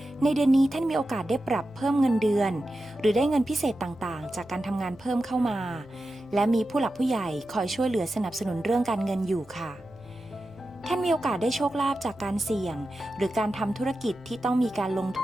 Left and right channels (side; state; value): right; noise; hum, 26 dB below the sound